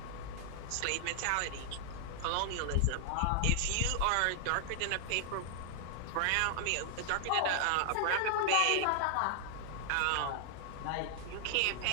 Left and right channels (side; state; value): both; different; correlation 0.00